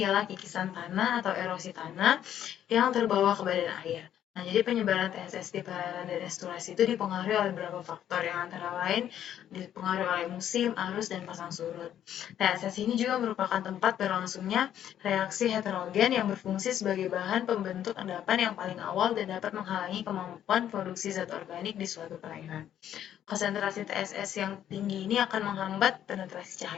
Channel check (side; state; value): right; quieter; 10.6 dB